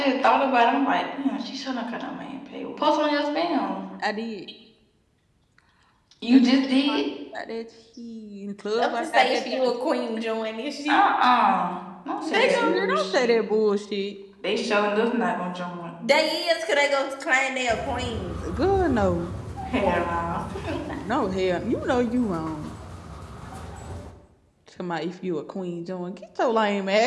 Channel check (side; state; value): both; identical; correlation 1.00